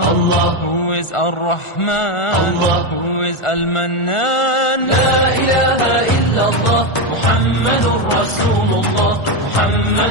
Who is Ar-Rahman? Allah. Who is Al-Mannan? La ilaha illallah, Muhammadur Rasulullah.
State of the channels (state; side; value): late; right; 1.4 ms